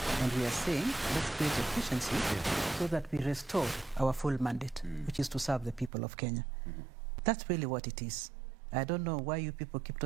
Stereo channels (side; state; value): left; drops out; at 5.9 s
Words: And we are saying, let's create efficiency so that we restore our full mandate, which is to serve the people of Kenya. That's really what it is. I don't know why you people keep